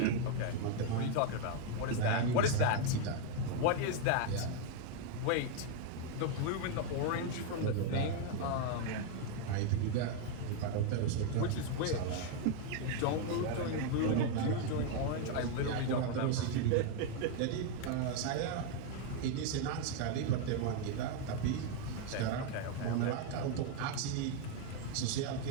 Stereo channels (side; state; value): both; different; correlation 0.01